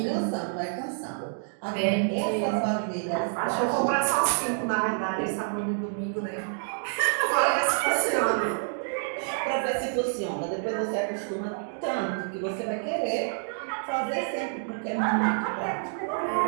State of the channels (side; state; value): left; silent; digital silence